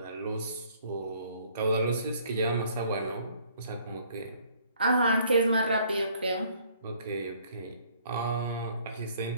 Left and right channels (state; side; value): inverted; both; correlation -0.60